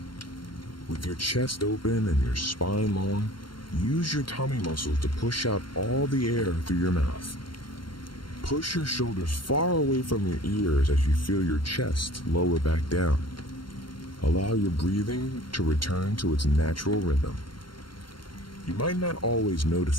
With your chest open and your spine long, use your tummy muscles to push out all the air through your mouth. Push your shoulders far away from your ears as you feel your chest lower back down. Allow your breathing to return to its natural rhythm. You might not always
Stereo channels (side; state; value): right; late; 0.73 ms